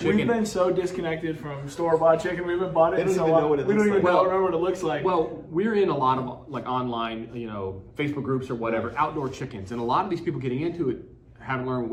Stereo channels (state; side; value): identical; both; correlation 1.00